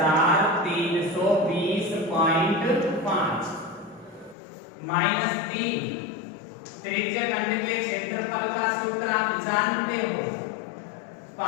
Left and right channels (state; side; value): drops out; right; at 4.4 s